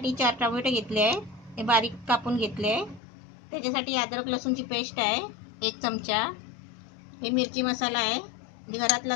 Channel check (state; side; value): drops out; right; at 3.0 s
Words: 4 टोमॅटो घेतले आहे, हे बारीक कापून घेतले आहे. त्याच्यासाठी अद्रक लसूणची पेस्ट आहे 1 चमचा. हे मिरची मसाला आहे,